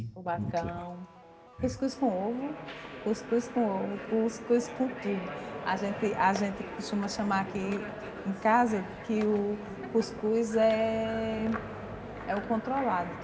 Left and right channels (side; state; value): both; identical; correlation 1.00